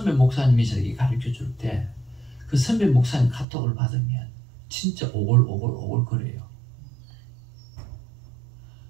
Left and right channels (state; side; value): drops out; left; at 3.5 s